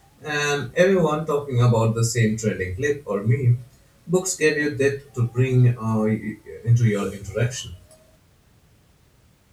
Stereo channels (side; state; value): both; identical; correlation 1.00